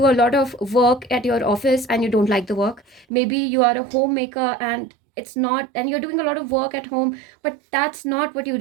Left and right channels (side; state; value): left; drops out; at 3.1 s